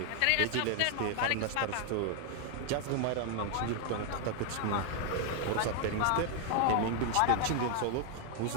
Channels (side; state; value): both; different; correlation 0.00